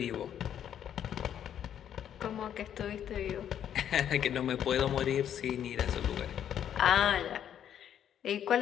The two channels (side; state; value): right; quieter; 9.7 dB